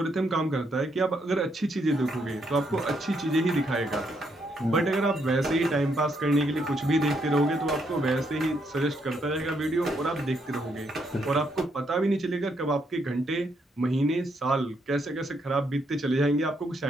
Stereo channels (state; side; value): normal; both; correlation 0.75